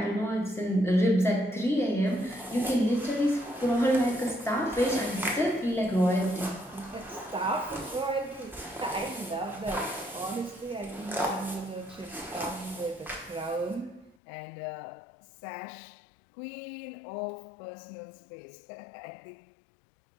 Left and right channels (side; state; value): right; drops out; at 14.2 s